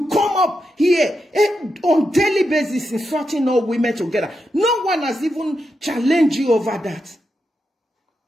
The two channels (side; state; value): both; normal; correlation 0.86